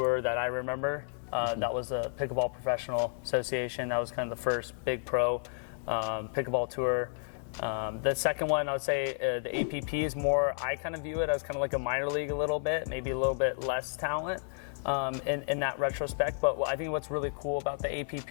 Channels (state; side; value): silent; right; 57 dB below the other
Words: that I remember. That was the Pickleball Professional Association. That was kind of the first big pro pickleball tour. The second one, I would say the APP is more, I kind of view it as kind of like a minor league a little bit, maybe a little bit less talent in that retrospect. But I think what's really cool about the